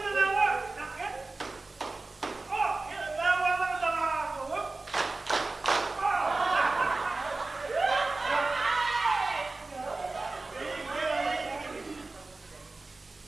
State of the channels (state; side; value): quieter; left; 3.4 dB